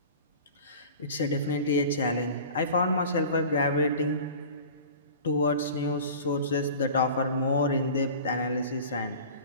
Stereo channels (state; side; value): inverted; both; correlation -0.40